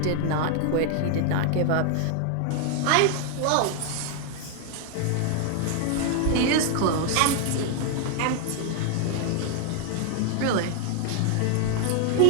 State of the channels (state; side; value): different; both; correlation 0.00